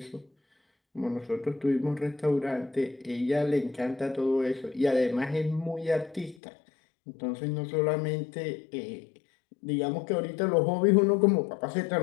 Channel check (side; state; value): right; drops out; at 6.4 s